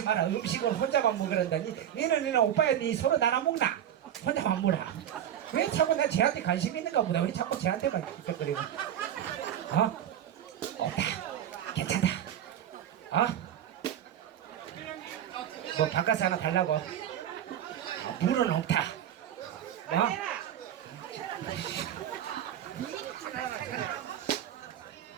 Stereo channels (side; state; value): left; quieter; 10.5 dB